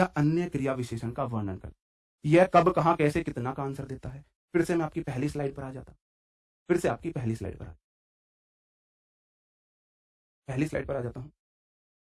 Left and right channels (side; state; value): both; identical; correlation 1.00